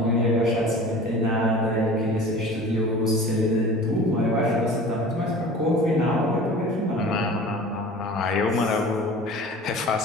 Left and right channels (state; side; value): normal; both; correlation 0.40